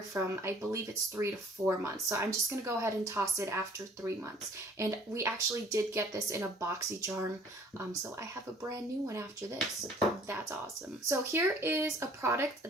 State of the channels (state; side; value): normal; both; correlation 0.55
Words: from, I believe it's 3 to 4 months. So I'm just going to go ahead and toss it after 3 months. And we actually did get this in a boxy charm, so I have a brand new one after this. That's awesome. So here is a